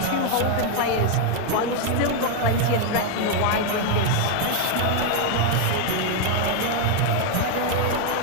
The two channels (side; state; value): both; different; correlation 0.00